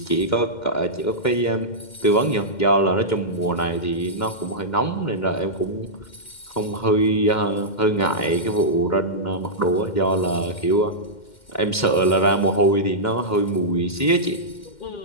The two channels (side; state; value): right; late; 2.1 ms